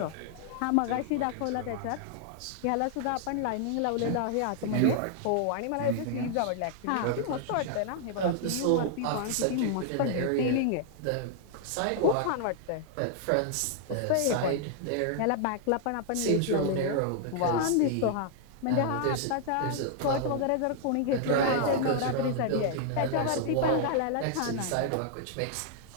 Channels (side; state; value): both; different; correlation -0.01